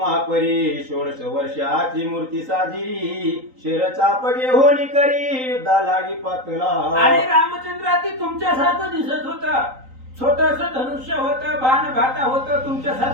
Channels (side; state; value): left; late; 3.9 ms